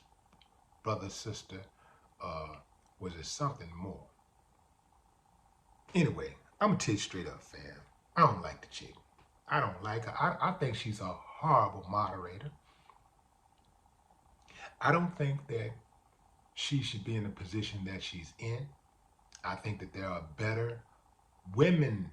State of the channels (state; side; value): identical; both; correlation 1.00